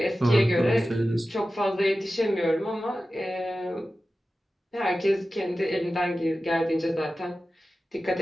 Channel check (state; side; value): normal; both; correlation 0.94